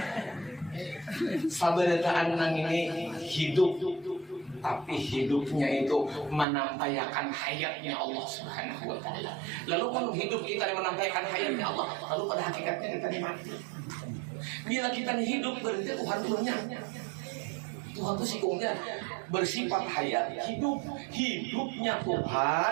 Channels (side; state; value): left; drops out; at 6.5 s